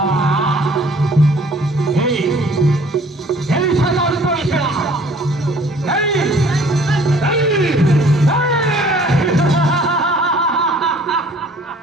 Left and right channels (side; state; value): both; normal; correlation 0.55